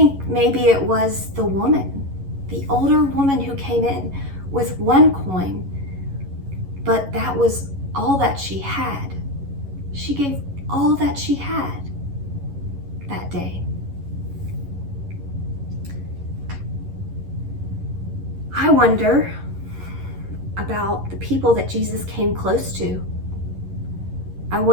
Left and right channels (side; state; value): left; late; 11 ms